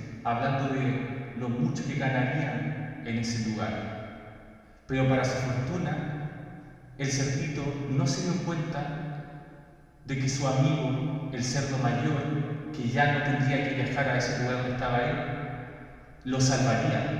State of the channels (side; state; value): both; identical; correlation 1.00